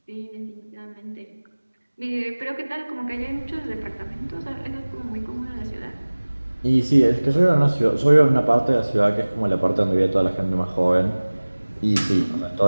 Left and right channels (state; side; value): inverted; both; correlation -1.00